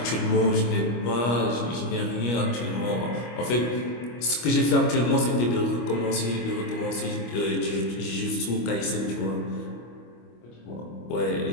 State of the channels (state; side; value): late; right; 25 ms